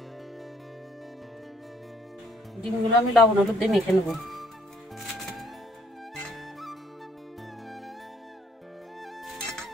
ডিমগুলো আমি লবণ হলুদ দিয়ে মেখে নেব।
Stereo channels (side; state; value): both; normal; correlation 0.65